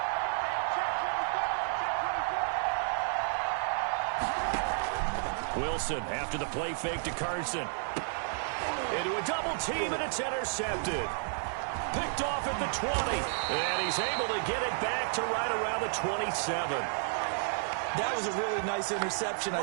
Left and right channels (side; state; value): left; silent; digital silence